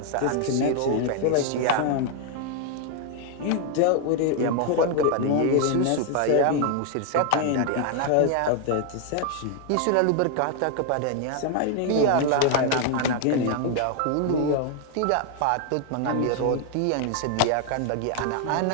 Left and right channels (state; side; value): different; both; correlation 0.00